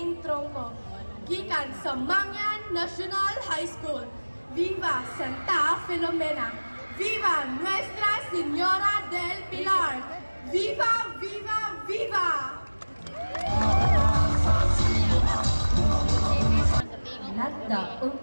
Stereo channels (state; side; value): inverted; both; correlation -1.00